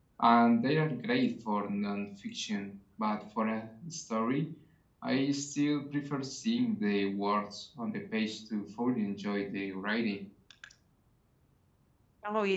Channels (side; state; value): both; identical; correlation 1.00